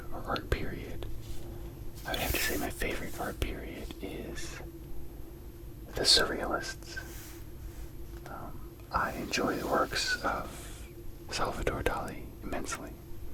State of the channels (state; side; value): identical; both; correlation 1.00